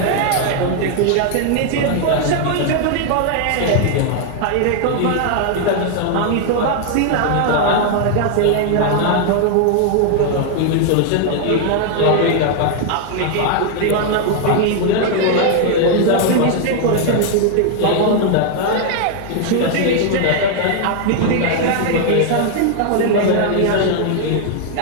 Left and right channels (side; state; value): both; different; correlation 0.00